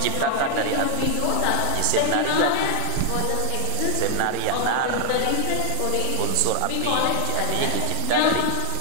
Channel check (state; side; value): different; both; correlation 0.00